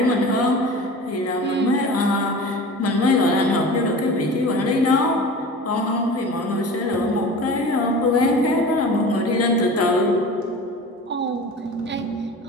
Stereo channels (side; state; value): both; normal; correlation 0.36